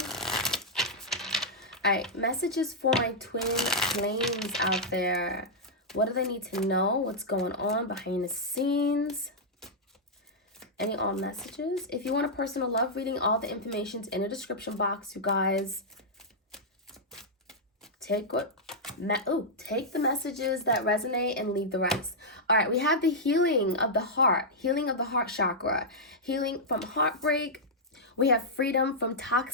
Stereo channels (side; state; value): both; normal; correlation -0.07